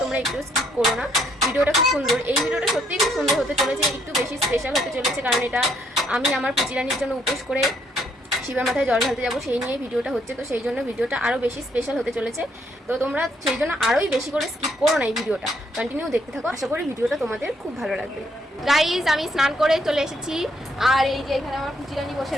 তোমরা একটু স্কিপ করো না। ভিডিওটা খুব সুন্দর, এই ভিডিওটা সত্যিই খুব সুন্দর হতে চলেছে, একটু বেশি স্পেশাল হতে চলেছে, কারণ এটা আমি আমার পুচিরানির জন্য উপোস করে শিবের মাথায় জল ঢালতে যাবো, সেই নিয়ে ভিডিওটা হচ্ছে। তো সেই জন্য ভিডিওটা আরও বেশি স্পেশাল হতে চলেছে। তো তোমরা সেই জন্য আরোই বেশি করে স্কিপ করো না, এই ভিডিওটা কন্টিনিউ দেখতে থাকো। আশা করি ভিডিওটা তোমাদের খুব ভালো লাগবে। গাইজ, আমি স্নান করে চলে এসেছি। আর এই যে এখানে আমার পুচিরানি বসে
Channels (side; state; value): both; normal; correlation 0.71